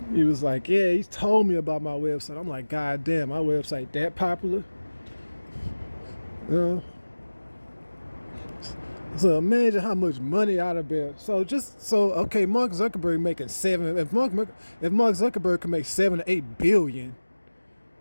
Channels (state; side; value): inverted; both; correlation -1.00